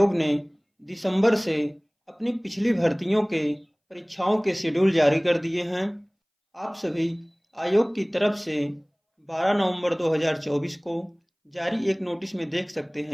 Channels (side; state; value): both; identical; correlation 1.00